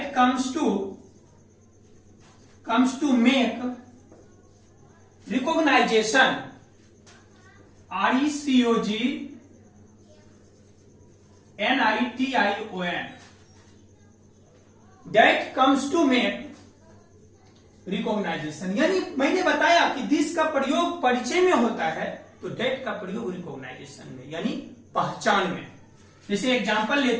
to make recognization, RECOGNITION, that comes to make recognization. यानी मैंने बताया कि दिस का प्रयोग परिचय में होता है तो डेट का प्रयोग रिकॉग्नाइजेशन में, यानी पहचान में। जैसे एग्जांपल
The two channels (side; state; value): both; identical; correlation 1.00